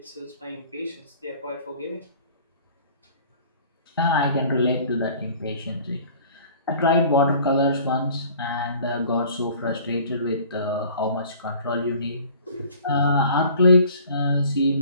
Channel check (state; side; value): inverted; both; correlation -0.49